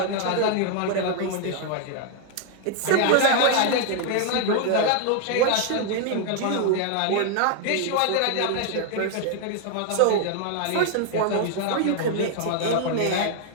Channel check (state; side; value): different; both; correlation 0.00